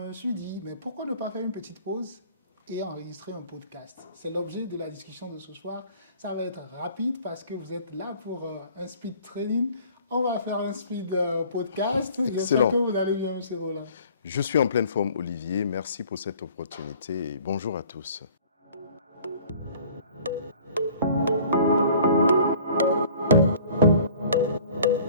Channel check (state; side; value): inverted; both; correlation -0.51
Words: suis dit, mais pourquoi ne pas faire une petite pause et enregistrer un podcast? C'est l'objet de la discussion de ce soir. Ça va être rapide parce que vous êtes là pour un speed training. On va faire un speed podcast. J'espère que Excellent. vous allez bien, M. Roland. Je suis en pleine forme, Olivier. Merci pour cette opportunité et bonjour à tous.